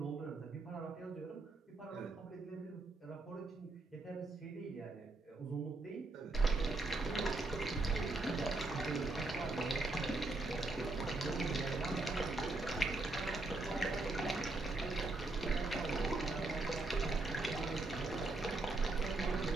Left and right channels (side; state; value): left; quieter; 3.1 dB